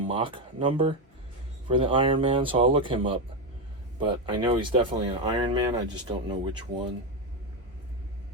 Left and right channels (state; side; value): normal; both; correlation 0.10